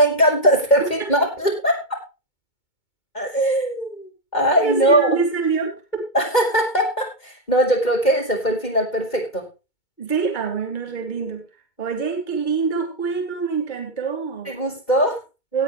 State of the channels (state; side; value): late; right; 2.2 ms